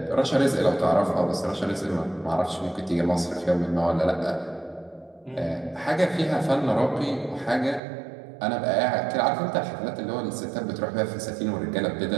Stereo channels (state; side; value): drops out; left; at 7.8 s